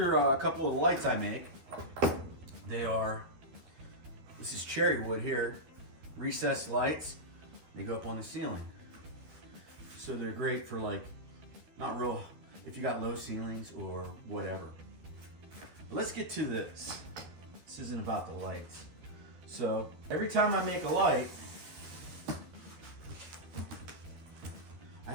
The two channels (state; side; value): late; left; 13 ms